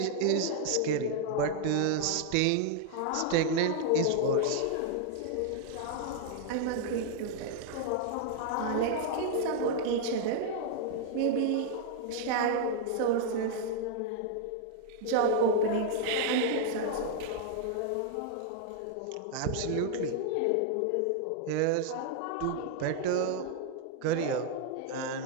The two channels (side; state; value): both; different; correlation 0.00